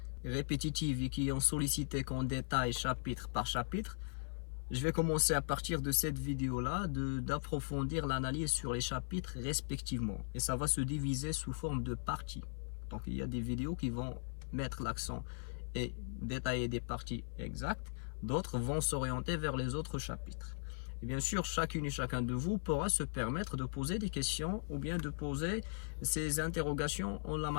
répétitives et qui ont sollicité qu'on détaille chapitre par chapitre, je vais commencer à partir de cette vidéo-là d'approfondir l'analyse sur les chapitres respectivement. Et ça va se diviser sous forme de parties. Donc il y a des vidéos qui vont mettre l'accent et détailler des parties exactes. D'autres vont s'orienter vers les autres chapitres. Et bien sûr, chacune et chacun de vous pourra se permettre de poser des questions ou bien de poser ses interrogations en la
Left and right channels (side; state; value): right; silent; 52 dB below the other